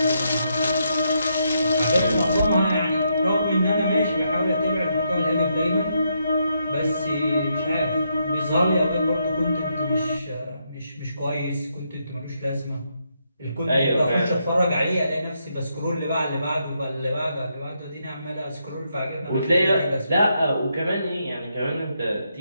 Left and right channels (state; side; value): inverted; both; correlation -0.79